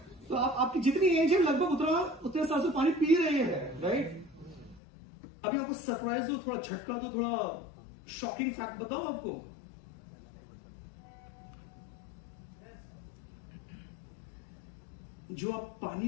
तो आपकी जितनी एज है लगभग उतने साल से पानी पी रहे हैं, राइट? अभी आपको सरप्राइज दो, थोड़ा झटका दो, थोड़ा शॉकिंग फैक्ट बताओ आपको। जो आप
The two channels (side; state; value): right; drops out; at 4.8 s